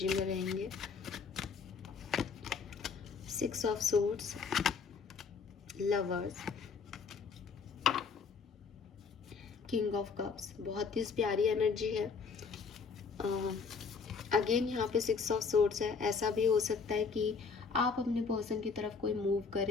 में रहेंगे। 6 of swords, lovers, king of cups, बहुत ही प्यारी एनर्जी है। अगेन यहाँ पे 6 ऑफ सोर्ड्स है। ऐसा भी हो सकता है कि आप अपने पर्सन की तरफ कोई मूव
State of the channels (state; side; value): quieter; right; 5.3 dB